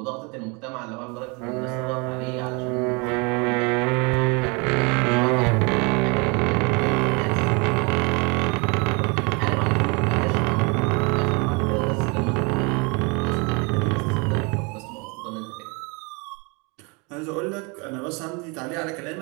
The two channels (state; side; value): quieter; left; 30.4 dB